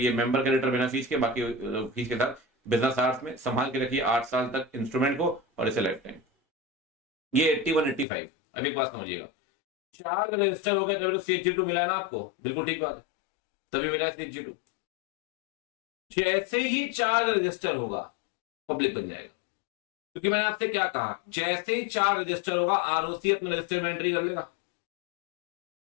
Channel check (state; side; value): drops out; right; at 8.1 s